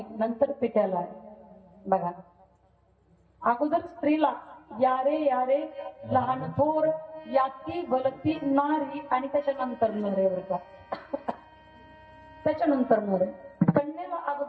नंतर पित्याला. बघा, अगोदर स्त्रीला यारे यारे लहान थोर याती भलती नारी, आणि त्याच्यानंतर नर आहे बरं का. त्याच्यानंतर नर. कन्येला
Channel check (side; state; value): both; identical; correlation 1.00